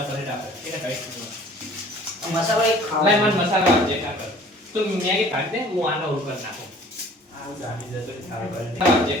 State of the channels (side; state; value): both; normal; correlation 0.51